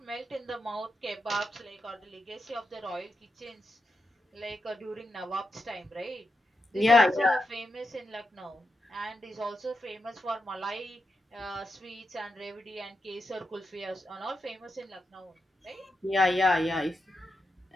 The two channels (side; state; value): both; normal; correlation 0.86